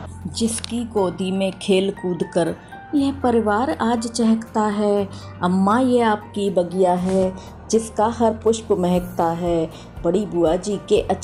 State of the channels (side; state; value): both; identical; correlation 1.00